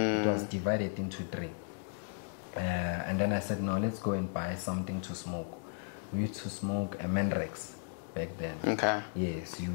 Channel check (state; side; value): silent; right; digital silence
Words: was divided into 3. And then I said, no, let's go and buy something to smoke. We used to smoke a Mandrax back then. Okay. Yes,